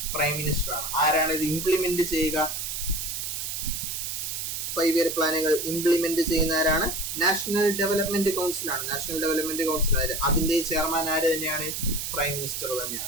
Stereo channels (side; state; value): right; noise; hiss, 4 dB below the sound